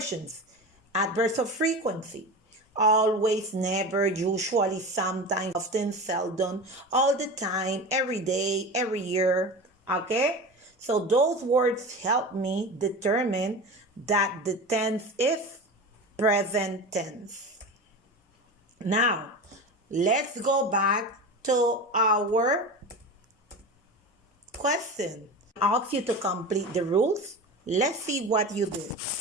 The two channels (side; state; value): both; normal; correlation 0.29